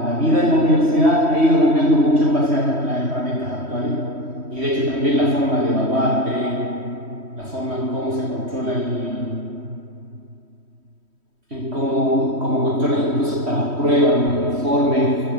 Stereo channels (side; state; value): left; late; 3.1 ms